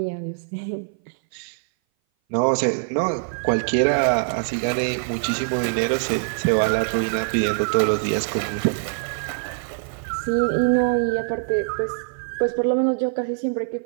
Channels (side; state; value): left; silent; 58 dB below the other